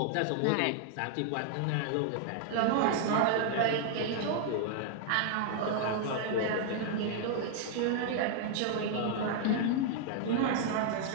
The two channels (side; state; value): both; different; correlation 0.00